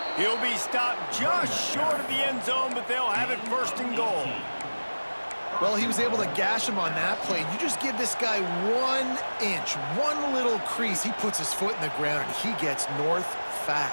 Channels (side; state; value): both; inverted; correlation -1.00